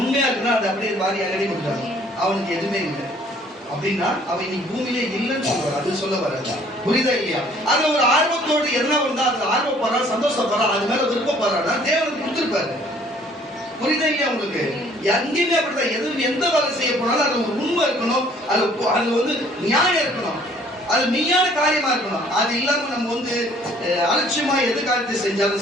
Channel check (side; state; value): both; normal; correlation 0.58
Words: உண்மையா இருக்குன்னா அதை அப்படியே வாரி எங்கடி கொடுத்தாங்க. அவனுக்கு எதுவுமே இல்லை அப்படின்னா அவன் இன்னைக்கு பூமியிலே இல்லைன்னு சொல்லுவார். அது சொல்ல வராது. புரியுதா இல்லையா? அது ஒரு ஆர்வத்தோடு என்ன வந்தா அது ஆர்வப்படுறான், சந்தோஷப்படுறான், அது மேல விருப்பப்படுறான்னா தேவனுக்கு கொடுத்துருப்பாரு. புரியுதா இல்லையா உங்களுக்கு? எங்கேயுமே அப்படிதான். எந்த வேலை செய்ய போனாலும் அது ஒரு உண்மை இருக்கணும். அது வந்து நியாயம் இருக்கணும். அது மெய்யான காரியமா இருக்கணும். அது இல்லாம நம்ம வந்து அலட்சியமா எது காரியத்தை